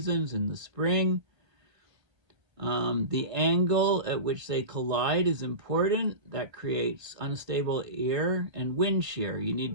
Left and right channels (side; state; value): left; late; 1.6 ms